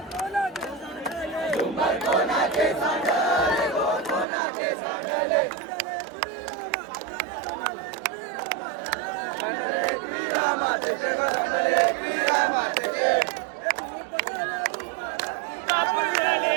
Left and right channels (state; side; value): drops out; left; at 4.2 s